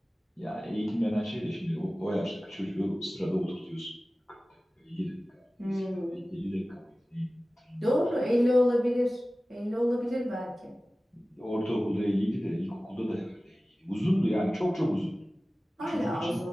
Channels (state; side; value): normal; both; correlation 0.97